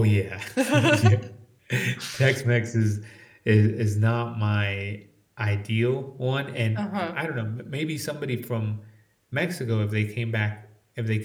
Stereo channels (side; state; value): both; identical; correlation 1.00